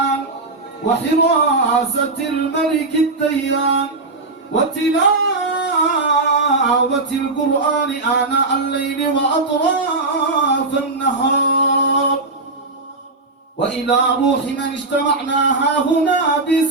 وحراسة الملك الديان وتلاوة القرآن آناء الليل وأطراف النهار، وإلى روح من اجتمعنا هنا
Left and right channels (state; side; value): quieter; left; 3.3 dB